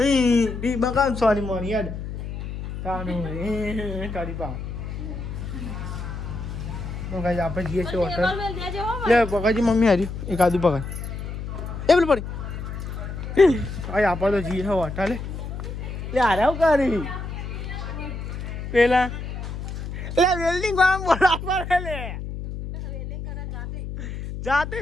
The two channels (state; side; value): noise; left; hum, 7 dB below the sound